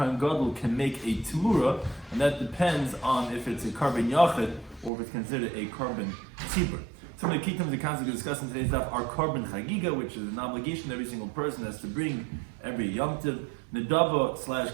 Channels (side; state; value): left; drops out; at 4.9 s